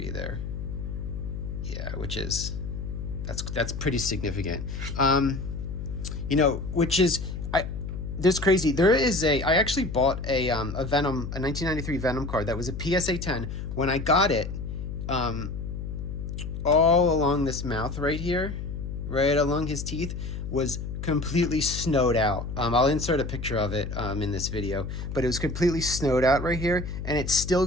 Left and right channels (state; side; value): noise; left; hum, 6 dB below the sound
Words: there. Yeah, which is, that's pretty significant. Which is, there's crazy. There is I actually bought a Venom, a 1993 Venom card that was a PSA 10. When I got it, all along this mouth right here, right along his teeth, was completely snowed out. I'll insert a picture of it in this video, but it was completely snowed out right here, and it still